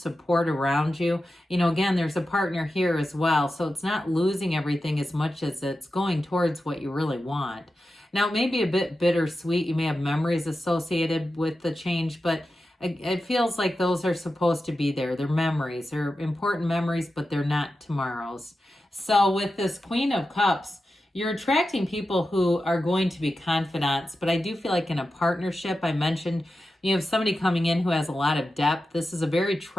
around you. You know, again, there's a partner here as well. So it's not losing everything as much as it's going towards what you really want. Now, it may be a bit bittersweet. You may have memories associated with the change, but it feels like those are supposed to be there. They're memories. They're important memories, but they're not tomorrow's. So with this Queen of Cups, you're attracting people who are going to be confidants, but I do feel like in a partnership, I mentioned you have somebody coming in who has a lot of depth. This is a very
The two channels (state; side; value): normal; both; correlation 0.91